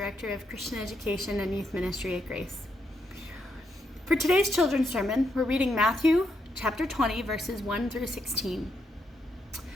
of Christian Education and Youth Ministry at Grace. For today's Children's Sermon, we're reading Matthew chapter 20 verses 1 through 16.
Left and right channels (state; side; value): normal; both; correlation 0.79